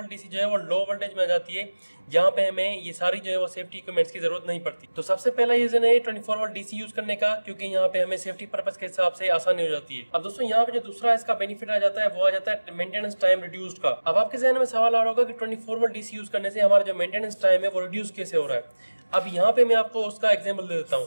डीसी जो है वो लो वोल्टेज में आ जाती है, जहाँ पे हमें ये सारी जो है वो सेफ्टी इक्विपमेंट्स की जरूरत नहीं पड़ती। तो सबसे पहला रीजन है 24 वोल्ट डीसी यूज करने का, क्योंकि यहाँ पे हमें सेफ्टी पर्पस के हिसाब से आसानी हो जाती है। अब दोस्तों यहाँ पे जो दूसरा इसका बेनिफिट आ जाता है वो आ जाता है मेंटेनेंस टाइम रिड्यूस्ड का। अब आपके जहन में सवाल आ रहा होगा कि 24 वोल्ट डीसी यूज करने से हमारा जो मेंटेनेंस टाइम है वो रिड्यूस कैसे हो रहा है। अब यहाँ पे मैं आपको उसका एग्जांपल दे देता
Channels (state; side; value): inverted; both; correlation -1.00